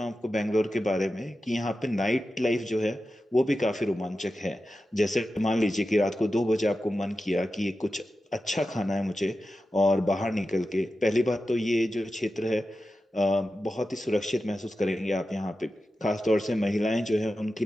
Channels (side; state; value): both; normal; correlation 0.92